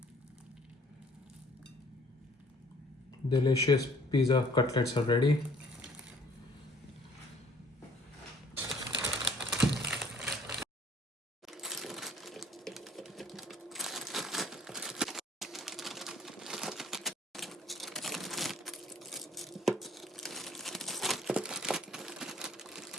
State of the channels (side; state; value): both; normal; correlation 0.58